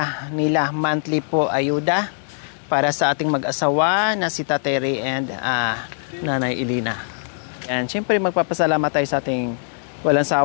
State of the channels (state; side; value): silent; right; 64 dB below the other